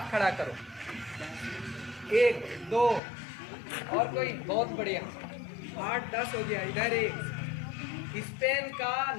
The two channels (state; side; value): drops out; right; at 3.0 s